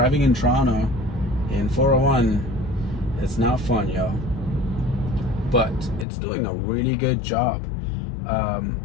in Toronto in 401, it's not fun, y'all, but it's doing a really good job.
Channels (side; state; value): right; drops out; at 6.1 s